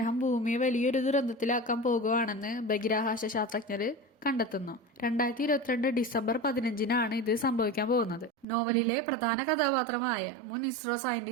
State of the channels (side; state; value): left; drops out; at 8.5 s